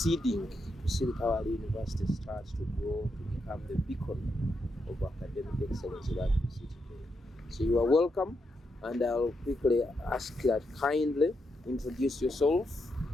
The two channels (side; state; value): both; normal; correlation 0.82